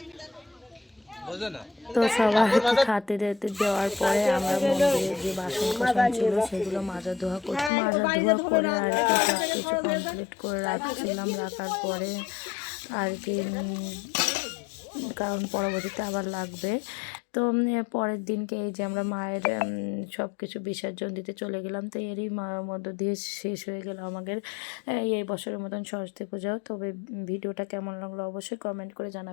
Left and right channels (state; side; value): drops out; right; at 7.7 s